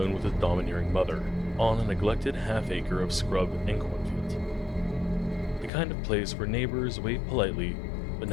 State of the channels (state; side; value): drops out; right; at 5.7 s